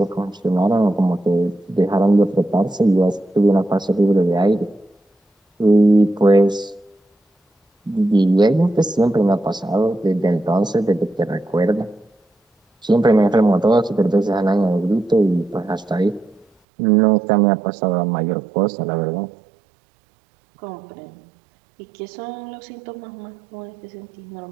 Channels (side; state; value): left; drops out; at 16.4 s